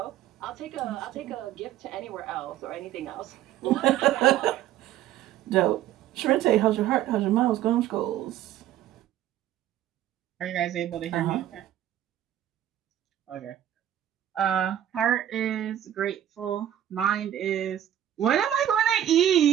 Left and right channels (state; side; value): quieter; left; 11.6 dB